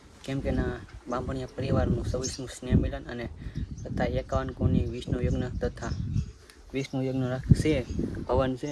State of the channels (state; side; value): identical; both; correlation 1.00